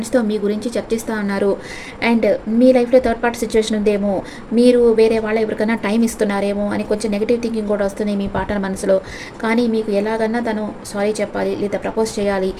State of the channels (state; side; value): identical; both; correlation 1.00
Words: మీ గురించి చర్చిస్తూ ఉన్నారు. అండ్ మీ లైఫ్లో థర్డ్ పార్టీ సిచ్యువేషన్ ఉందేమో, మీరు వేరే వాళ్ళ ఎవరికైనా టైం ఇస్తున్నారేమో అని కొంచెం నెగిటివ్ థింకింగ్ కూడా వస్తుంది మీ పార్ట్నర్ మనసులో. కానీ మీకు ఎలాగన్నా తను సారీ చెప్పాలి లేదా ప్రపోజ్ చేయాలి,